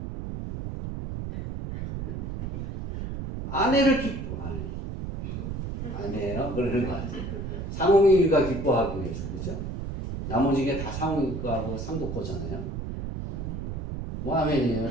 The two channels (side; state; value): right; noise; rumble, 6 dB below the sound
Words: 아내예요? 그러는 거 아니에요. 상홍이가 기뻐하기 위해서. 그죠? 나머지 게 다 상홍이가하고 상도 거잖아요. 뭐 아멘이에요.